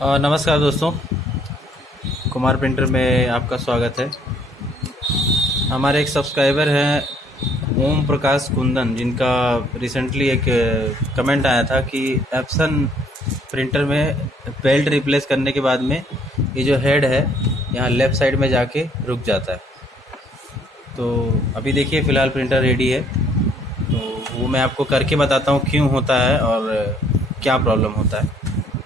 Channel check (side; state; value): both; normal; correlation 0.64